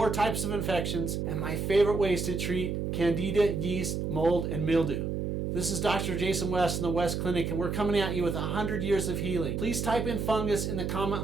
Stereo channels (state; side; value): noise; right; hum, 2 dB below the sound